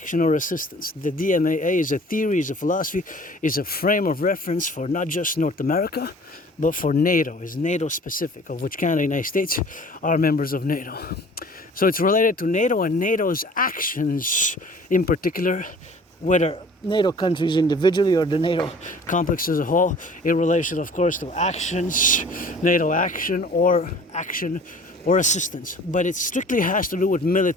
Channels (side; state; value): both; normal; correlation 0.48